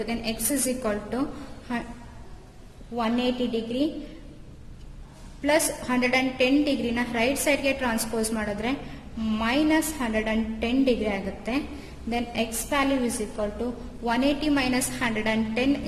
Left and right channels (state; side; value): identical; both; correlation 1.00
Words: Then x is equal to 180 degree plus 110 degree na right side ಗೆ transpose ಮಾಡಿದ್ರೆ minus 110 degree ಆಗುತ್ತೆ. Then x value is equal to 180 minus 110